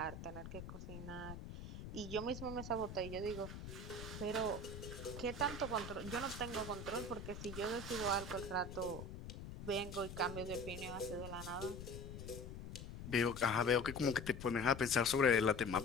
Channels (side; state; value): left; noise; rumble, 10 dB below the sound